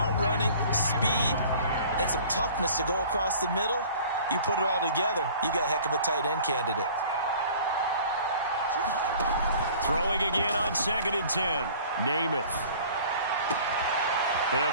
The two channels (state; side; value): inverted; both; correlation -0.48